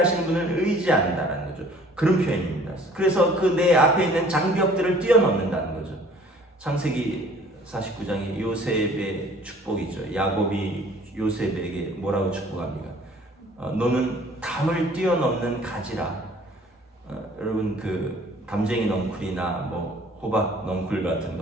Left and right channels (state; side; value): normal; both; correlation 0.53